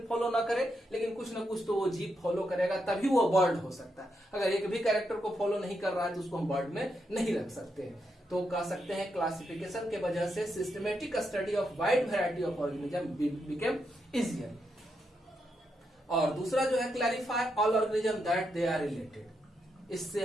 फॉलो ना करे लेकिन कुछ ना कुछ तो वो जीव फॉलो करेगा, तभी वो बर्ड हो सकता है। अगर एक भी कैरेक्टर को फॉलो नहीं कर रहा है तो उसको हम बर्ड में नहीं रख सकते हैं। तो कह सकते हैं क्लासिफिकेशन के वजह से systematic study of wide variety of organism became easier. और दूसरा जो है, clarify all organism that they are related. इससे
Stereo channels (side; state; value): both; normal; correlation 0.82